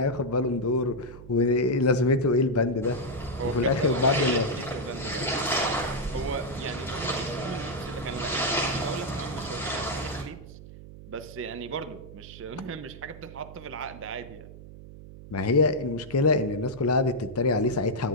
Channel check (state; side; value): noise; right; hum, 16 dB below the sound